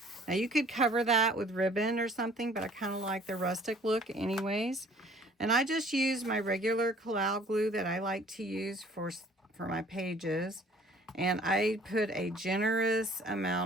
Now you could cover that with ribbon or something, but I kind of like the rustic look anyways. And I just use my regular Collal glue that I like to use for my pages. And I put a generous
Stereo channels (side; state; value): both; normal; correlation 0.54